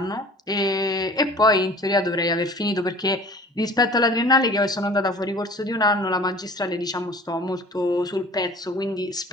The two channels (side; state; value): both; normal; correlation 0.45